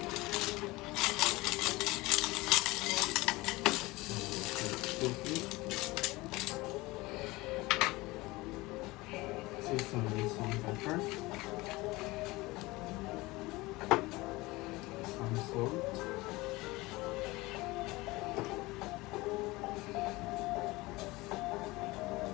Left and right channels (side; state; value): right; quieter; 21.3 dB